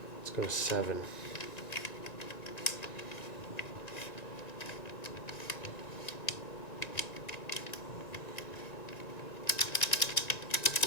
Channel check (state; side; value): late; right; 1.9 ms